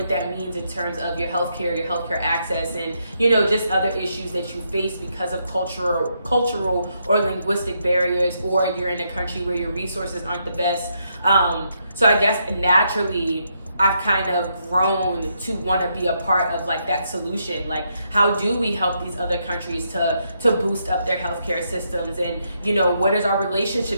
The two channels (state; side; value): inverted; both; correlation -0.78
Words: that means in terms of your healthcare access, and just other issues that you face because of cultural or linguistic barriers, or you're in a country where your resources aren't the best. So I guess naturally I've kind of grown to want to be a part of like that solution. Like, how do we help these other countries to boost up their healthcare systems? And what is our